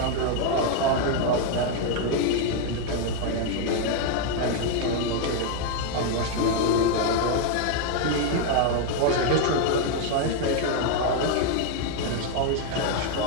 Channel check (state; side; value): different; both; correlation 0.00